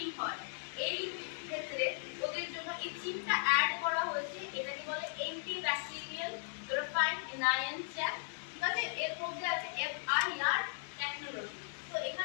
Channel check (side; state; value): right; silent; digital silence